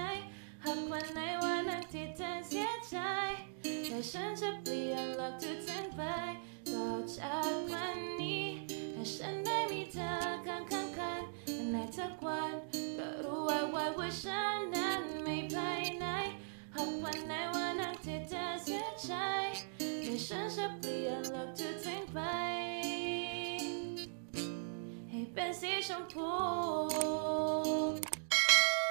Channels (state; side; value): silent; left; digital silence